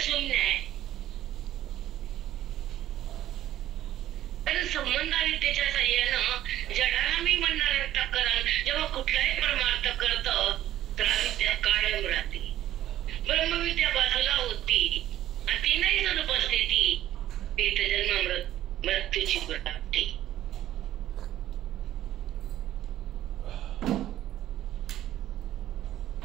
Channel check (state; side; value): quieter; left; 13.0 dB